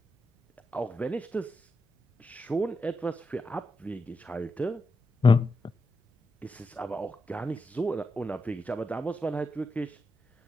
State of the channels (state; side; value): normal; both; correlation 0.87